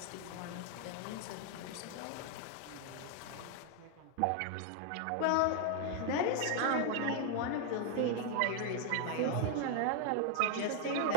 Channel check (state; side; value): different; both; correlation 0.00